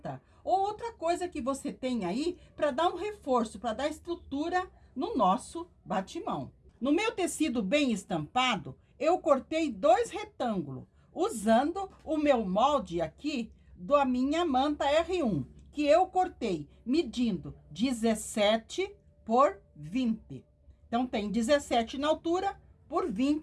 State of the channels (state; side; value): identical; both; correlation 1.00